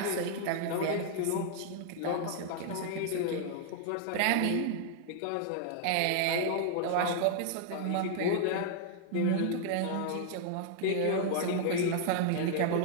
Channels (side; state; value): both; different; correlation -0.01